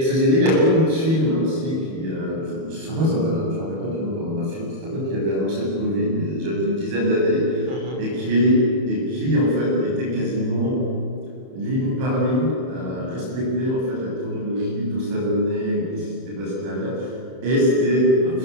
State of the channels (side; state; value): left; late; 31 ms